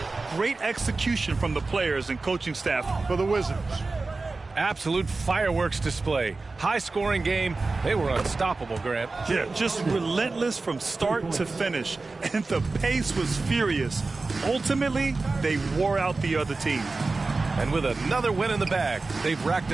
Great execution from the players and coaching staff. For the Wizards. Absolute fireworks display. High-scoring game. They were unstoppable, Grant. Yeah, just relentless from start to finish. And the pace was furious. Ultimately, they wore out the other team. And with another win in the bag, they've racked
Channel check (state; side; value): quieter; left; 3.7 dB